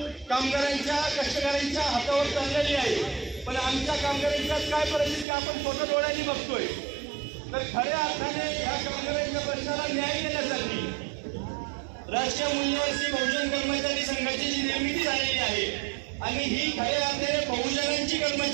कामगारांच्या, कष्टकऱ्यांच्या हातावर चाललेली आहे. पण आमच्या कामगारांच्या काय परिस्थिती आपण स्वतः डोळ्यांनी बघतोय. तर खऱ्या अर्थाने या कामगारांच्या प्रश्नाला न्याय देण्यासाठी राष्ट्रीय मूल्यवासी बहुजन कर्मचारी संघाची जी निर्मिती झालेली आहे आणि ही खऱ्या अर्थाने बहुजनांची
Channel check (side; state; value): left; drops out; at 5.2 s